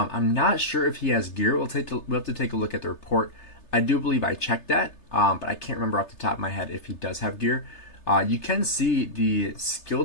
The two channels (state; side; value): late; right; 3.3 ms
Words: not sure if he has gear. We'll have to take a look at the report. I do believe I checked that, but I can't remember off the top of my head if he does have gear. You can see the skill